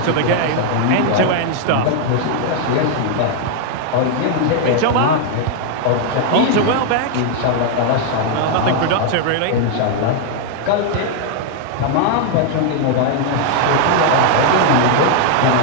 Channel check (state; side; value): different; both; correlation 0.00